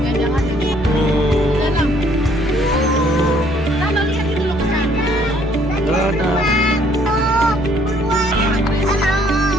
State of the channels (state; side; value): normal; both; correlation 0.63